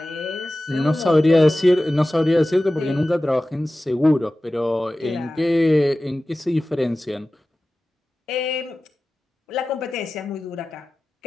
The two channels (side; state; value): both; normal; correlation 0.96